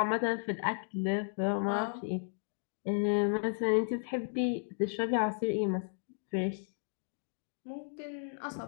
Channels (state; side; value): silent; right; digital silence